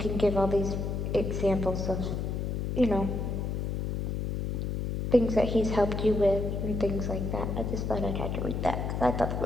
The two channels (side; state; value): left; noise; hum, 2 dB below the sound